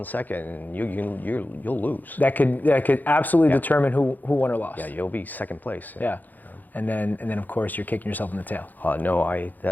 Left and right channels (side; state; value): right; late; 0.084 ms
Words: second and you'll lose. That could absolutely determine who won or lost. Yeah, you'll be second place. Yeah. And then of course you're kicking yourself in the tail. No,